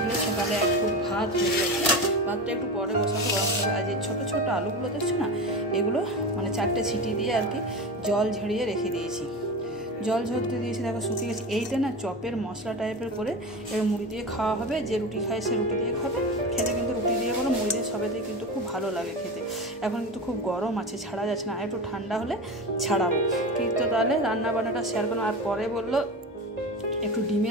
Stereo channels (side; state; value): both; normal; correlation 0.26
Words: সকালে একটু ভাত হয়ে গেছে, ভাতটা একটু পরে বসাতে গরম হবে। আর যে ছোটো ছোটো আলুগুলো দেখছো না, এগুলো মানে 4টে সিটি দিয়ে আর কি জল ঝরিয়ে রেখে দিয়েছি। জল ঝরতে দিয়েছি, দেখো শুকিয়ে গেছে। এইটা না চপের মশলা টাইপের করে এবার মুড়ি দিয়ে খাওয়া হবে, যে রুটি খায় সে রুটি দিয়ে খাবে। খেতে কিন্তু রুটি দিয়ে বলো মুড়ি দিয়ে সবে দিয়ে কিন্তু খুব ভালো লাগে খেতে। এখন কিন্তু খুব গরম আছে, ছাড়া যাচ্ছে না, একটু ঠান্ডা হলে ছাড়াবো। কিন্তু তাহলে রান্না বান্নাটা শেয়ার করো। আর পরে বললো একটু